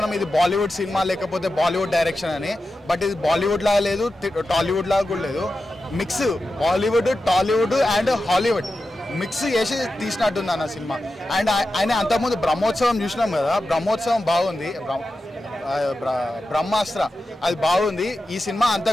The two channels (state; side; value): normal; both; correlation 0.91